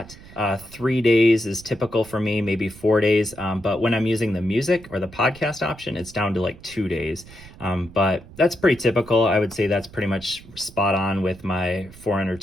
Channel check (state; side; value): noise; right; rumble, 20 dB below the sound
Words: 3 days is typical for me, maybe 4 days. But when I'm using the music or the podcast option, it's down to like 2 days. But that's pretty typical. I would say that's pretty much spot on with my 400